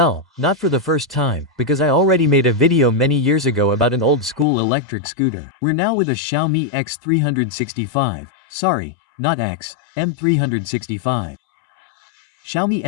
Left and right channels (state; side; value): drops out; right; at 4.5 s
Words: not for the first time, because I already made a video many years ago about an old school electric scooter. We're now with a Xiaomi X365. Sorry, not X, M365. Xiaomi